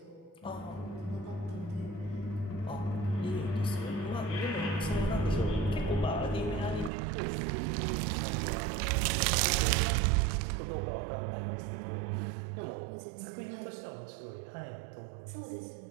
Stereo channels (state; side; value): drops out; left; at 6.9 s